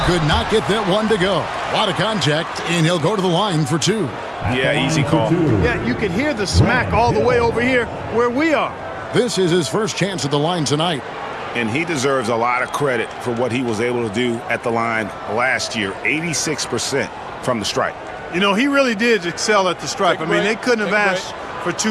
could not get that one to go. A lot of contact, and he'll go to the line for 2. Yeah, easy call. Yeah, you can hear the smack all the way over here where we are. This is his first chance at the line tonight. And he deserves a lot of credit for what he was able to do at the line last year. 86% from the stripe. You know, he really did excel at the stripe. I mean, they couldn't have asked for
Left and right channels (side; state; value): both; identical; correlation 1.00